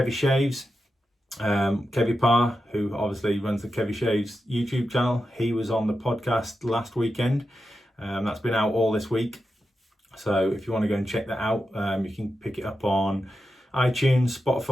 Shaves, Kevy Parr, who obviously runs the Kevy Shaves YouTube channel. He was on the podcast last weekend. That's been out all this week, so if you want to go and check that out, you can pick it up on iTunes,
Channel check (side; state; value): both; normal; correlation 0.89